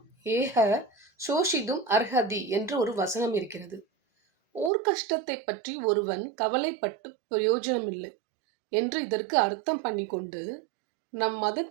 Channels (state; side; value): drops out; left; at 4.7 s